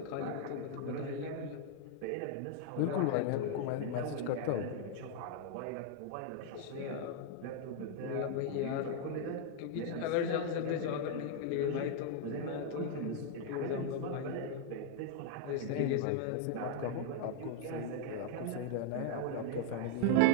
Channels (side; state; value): both; different; correlation 0.00